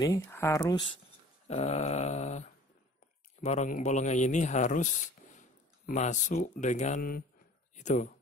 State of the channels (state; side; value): normal; both; correlation 0.47